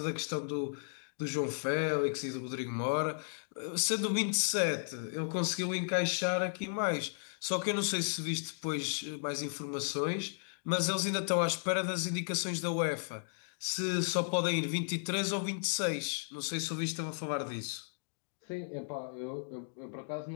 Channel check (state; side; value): silent; right; digital silence